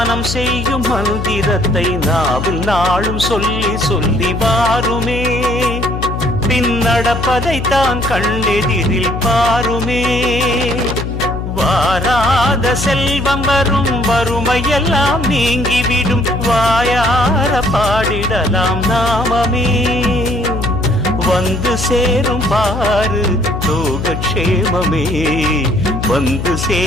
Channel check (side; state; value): left; noise; hum, 5 dB below the sound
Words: செய்யும் மந்திரத்தை நாவில் நாளும் சொல்லி சொல்லி வாருமே. பின்னடப்பதைத்தான் கண்ணெதிரில் பாருமே. வாராத செல்வம் வரும், வறுமையெல்லாம் நீங்கிவிடும், வாயார பாடிடலாம் நாமமே. வந்து சேரும் பாரு லோகக்ஷேமமே, வந்து